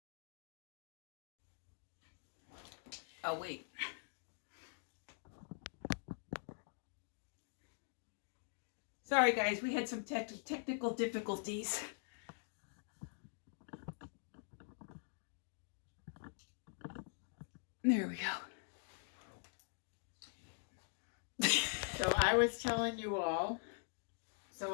Oh wait. Sorry guys, we had some technical difficulties. There we go. So I was telling you all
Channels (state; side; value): silent; right; digital silence